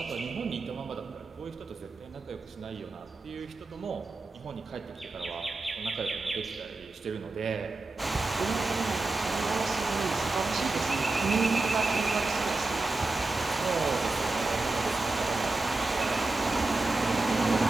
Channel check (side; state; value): left; quieter; 3.3 dB